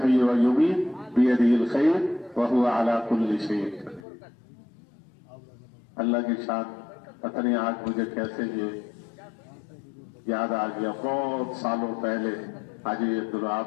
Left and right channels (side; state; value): right; drops out; at 4.0 s